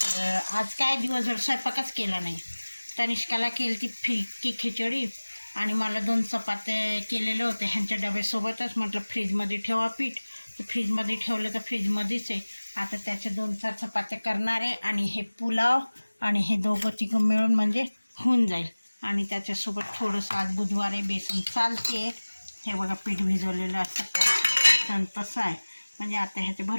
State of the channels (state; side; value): inverted; both; correlation -1.00